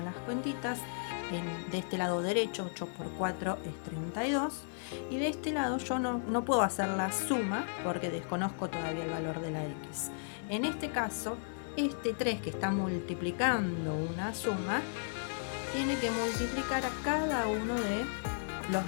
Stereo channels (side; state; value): right; silent; digital silence